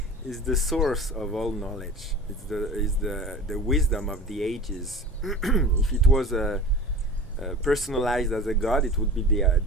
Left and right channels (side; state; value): both; normal; correlation 0.36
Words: is the source of all knowledge. It's the wisdom of the ages. If it was personalized as a god, it would be